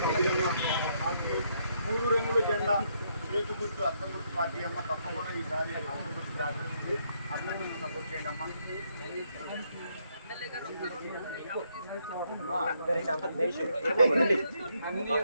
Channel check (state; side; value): inverted; both; correlation -0.74